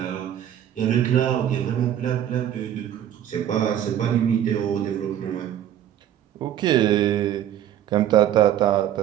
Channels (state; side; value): quieter; left; 10.8 dB